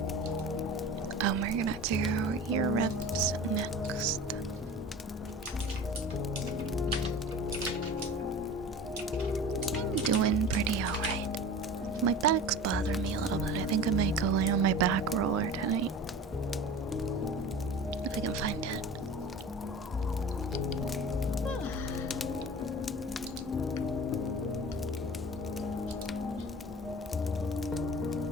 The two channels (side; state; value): both; normal; correlation 0.37